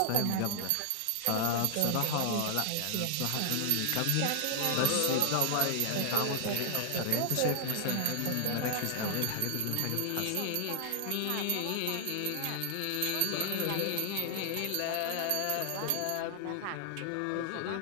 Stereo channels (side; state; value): both; different; correlation 0.00